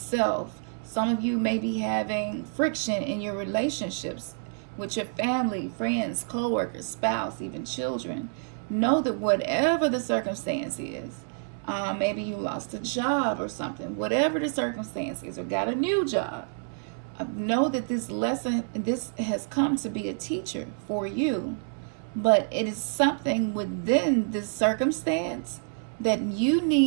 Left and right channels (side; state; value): left; silent; 59 dB below the other